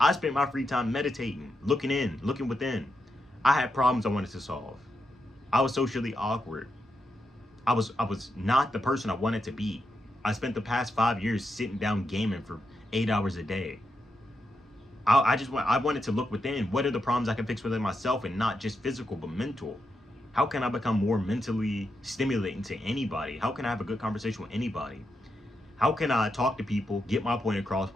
spent my free time meditating, looking within. I had problems I wanted to solve. I was socially awkward. I was not the person I wanted to be. I spent the past 5 years sitting down gaming for 8 hours a day. I wanted to look within. What are the problems I can fix within myself, and not just physical but mental? How can I become more mentally stimulating to anybody? How can I have a good conversation with anybody? How can I talk to people, get my point across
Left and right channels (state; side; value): normal; both; correlation 0.85